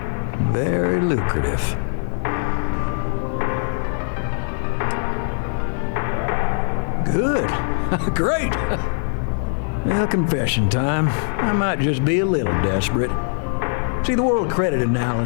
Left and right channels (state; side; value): silent; right; 65 dB below the other